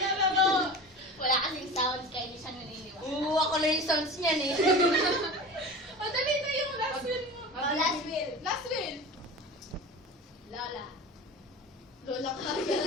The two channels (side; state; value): both; normal; correlation 0.34